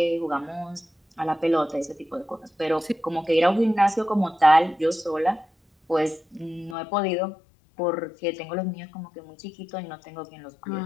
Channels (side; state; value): right; drops out; at 6.8 s